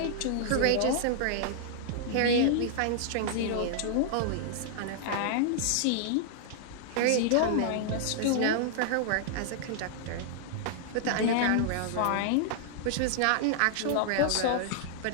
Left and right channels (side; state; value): both; different; correlation -0.01